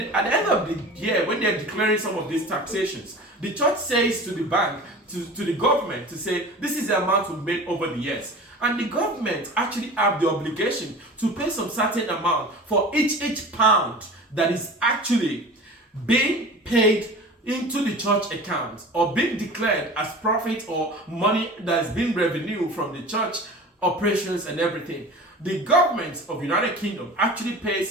at the end of the year, when they're declaring some of these taxations, the church says to the bank, to the government, to say, this is the amount we've made over the years. And the government actually have the obligation to pay some certain amount for each pound that is actually being paid into the church account, or being declared as profit or money that's been revenue from the church operations and everything. The government of United Kingdom actually pays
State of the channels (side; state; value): both; normal; correlation 0.38